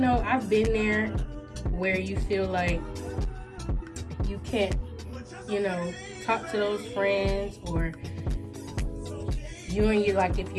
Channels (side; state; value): both; identical; correlation 1.00